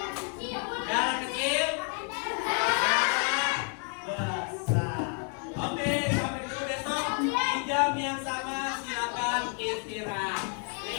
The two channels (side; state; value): right; quieter; 39.3 dB